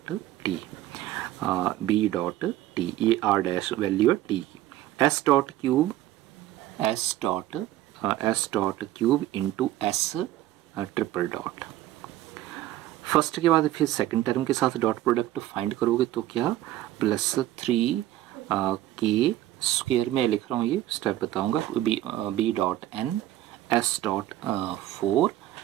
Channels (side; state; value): left; quieter; 14.3 dB